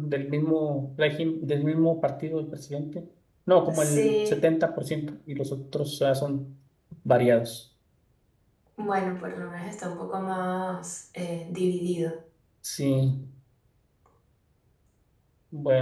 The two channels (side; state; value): both; identical; correlation 1.00